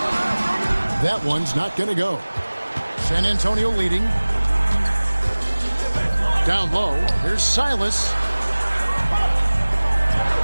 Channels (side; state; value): both; inverted; correlation -1.00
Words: That one's not going to go. San Antonio leading. Down low. Here's Silas.